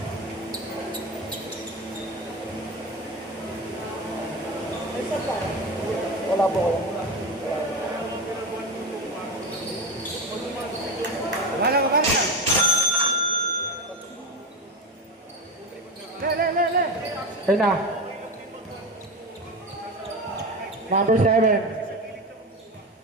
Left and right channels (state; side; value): normal; both; correlation 0.22